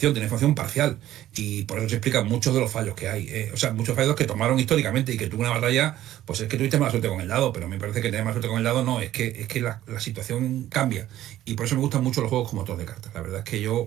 tiene información parcial. Y por eso se explican muchos de los fallos que hay. O sea, muchos fallos que tomaron históricamente y que tuvo una batalla, pues es que tuviste mala suerte con el dado, pero me parece que tener mala suerte con el dado no, es que la situación cambia. Y por eso me gustan mucho los juegos como motor de cartas. La verdad es que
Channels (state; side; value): quieter; left; 13.4 dB